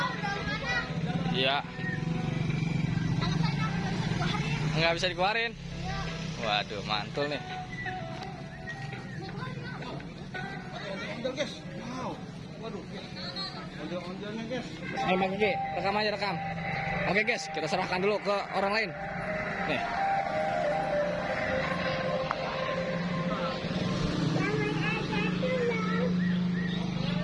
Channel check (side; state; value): both; identical; correlation 1.00